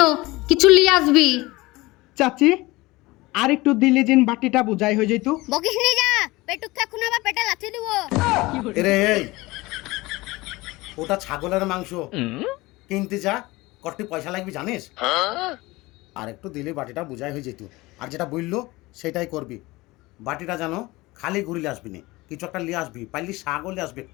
কিছু লিয়ে আসবি। চাচি আর একটু দিলে জিন বাটিটা বুঝাই হয়ে যেত। বকিস নি, যা পেটুক এখন আবার পেটে লাথি দিব। এরে এই, ওটা ছাগলের মাংস কিনতে যা, কত পয়সা লাগবে জানিস? আর একটু দিলে বাটিটা বুঝাই হয়ে যেত। আর যেটা বললো সেটাই করবি। বাটিটা জানো খালি ঘুরিলে আসবি না, কিছু একটা নিয়ে আসবি, পাইলি শাকও নিয়ে আসবি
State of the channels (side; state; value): right; quieter; 21.0 dB